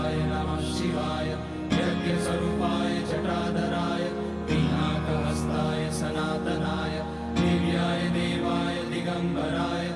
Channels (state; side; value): identical; both; correlation 1.00